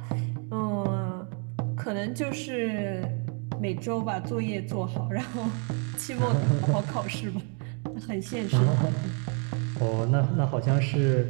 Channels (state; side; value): quieter; left; 37.7 dB